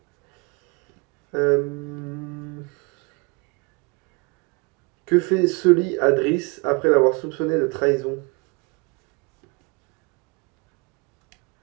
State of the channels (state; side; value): quieter; left; 29.4 dB